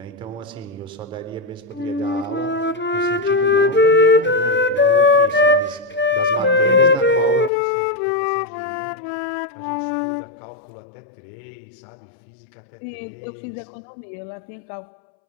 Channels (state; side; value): drops out; right; at 7.5 s